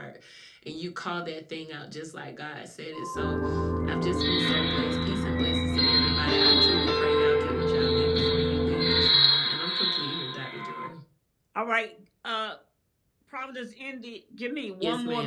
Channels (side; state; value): both; identical; correlation 1.00